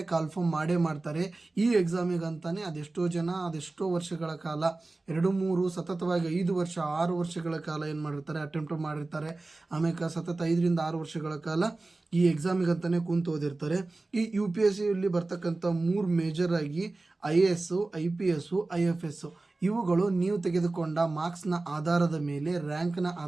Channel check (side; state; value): left; quieter; 3.2 dB